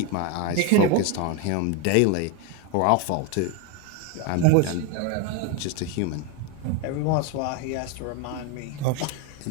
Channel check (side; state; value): both; different; correlation 0.02